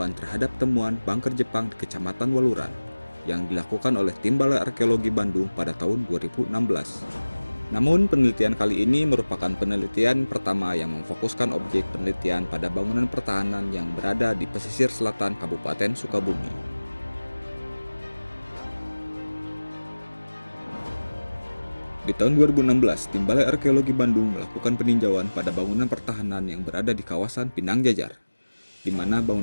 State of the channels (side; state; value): both; inverted; correlation -1.00